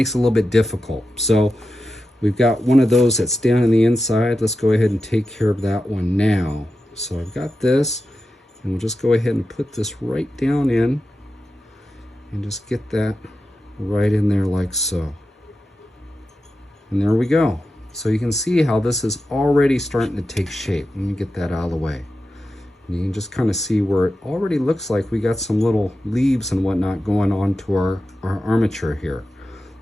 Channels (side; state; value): both; normal; correlation 0.91